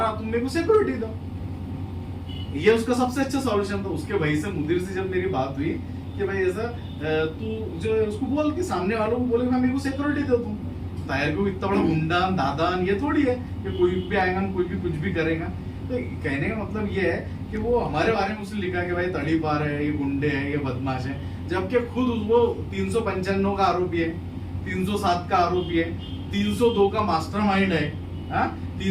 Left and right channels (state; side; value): identical; both; correlation 1.00